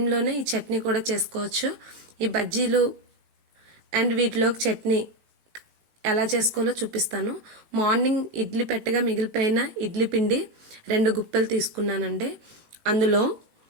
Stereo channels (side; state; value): left; late; 19 ms